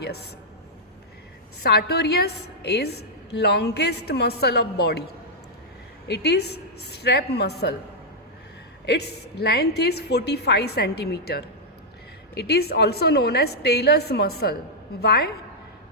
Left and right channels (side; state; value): both; normal; correlation -0.06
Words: Sartorius is longest muscle of body. It is strap muscle. Its length is 45 centimeter. It is also known as Taylor's muscle. Why?